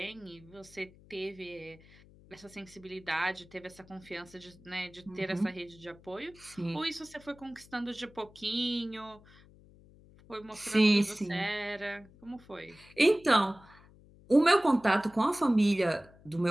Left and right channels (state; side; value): noise; left; hum, 24 dB below the sound